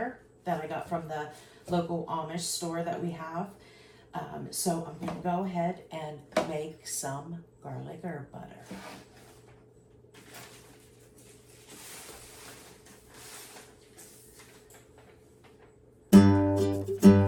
that I got from the local Amish store that we have. So I'm going to go ahead and make some garlic herb butter.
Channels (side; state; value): both; identical; correlation 1.00